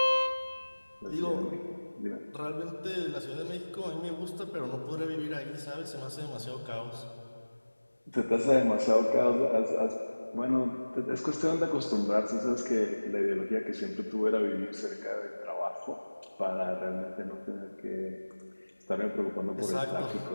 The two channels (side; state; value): both; inverted; correlation -1.00